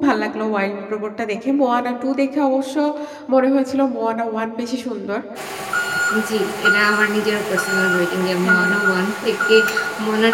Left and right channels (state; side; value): identical; both; correlation 1.00